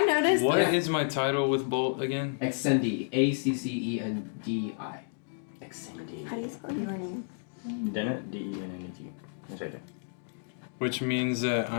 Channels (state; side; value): silent; right; digital silence